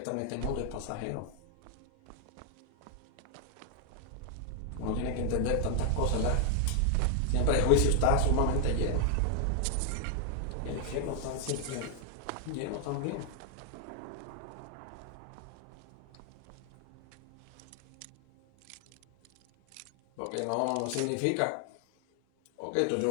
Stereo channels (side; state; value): both; different; correlation 0.00